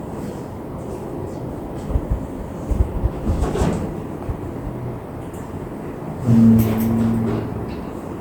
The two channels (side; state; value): both; identical; correlation 1.00